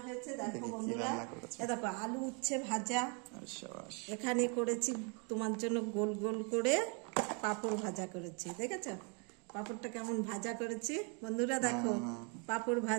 হয়েছে। দেখো বন্ধুরা, দেখো আলু উচ্ছে ভাজা, এখানে করেছি তোমার জন্য গোল গোল করে পাঁপড় ভাজা করেছি। দেখেছো পাঁপড়টা কেমন ভাজা করেছি বন্ধুরা? দেখো পাঁপড়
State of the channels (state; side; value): quieter; left; 35.0 dB